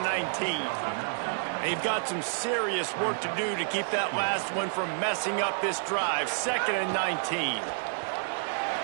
They've got some serious work to do to keep that last one from messing up this drive. 2nd and 19.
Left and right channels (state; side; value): silent; left; 57 dB below the other